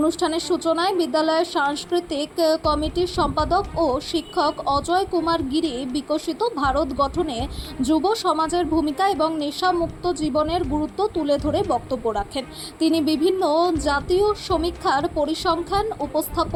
সূচনায় বিদ্যালয়ের সাংস্কৃতিক কমিটির সম্পাদক ও শিক্ষক অজয় কুমার গিরি বিকশিত ভারত গঠনে যুব সমাজের ভূমিকা এবং নেশামুক্ত জীবনের গুরুত্ব তুলে ধরে বক্তব্য রাখেন। তিনি বিভিন্ন জাতীয় সমীক্ষার পরিসংখ্যান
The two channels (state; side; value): identical; both; correlation 1.00